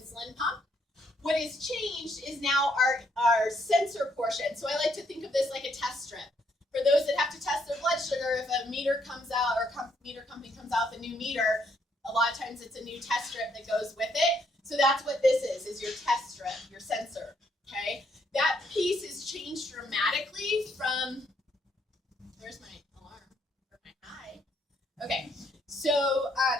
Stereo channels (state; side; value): normal; both; correlation 0.72